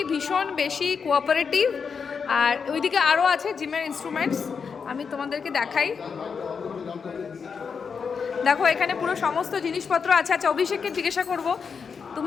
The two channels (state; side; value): quieter; right; 5.9 dB